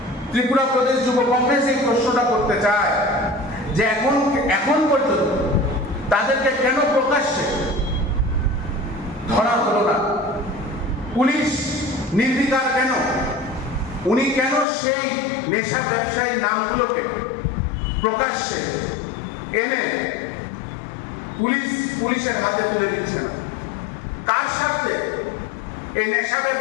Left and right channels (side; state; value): right; drops out; at 14.7 s